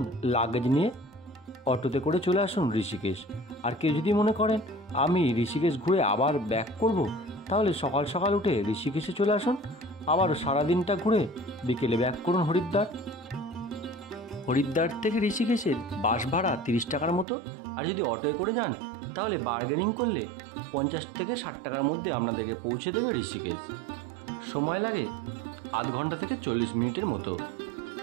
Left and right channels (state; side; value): drops out; left; at 17.2 s